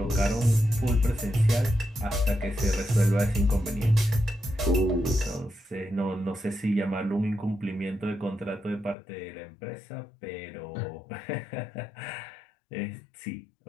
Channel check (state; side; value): drops out; right; at 9.0 s